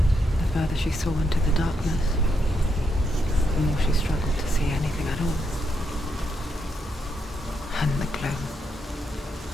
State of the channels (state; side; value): normal; both; correlation 0.80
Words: The further she saw into the darkness, the more she struggled to see anything at all. And the gloom,